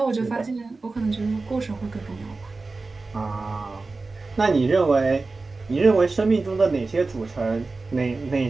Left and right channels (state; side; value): quieter; left; 3.7 dB